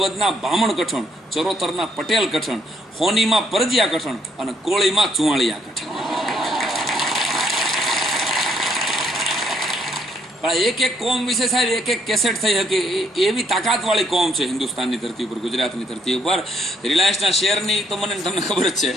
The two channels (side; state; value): both; normal; correlation 0.70